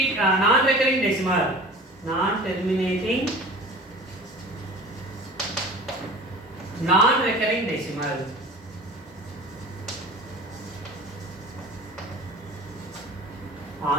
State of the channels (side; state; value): both; normal; correlation 0.40